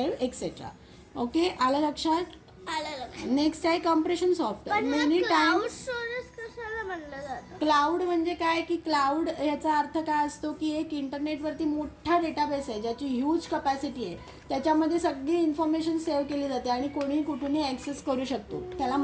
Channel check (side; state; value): both; identical; correlation 1.00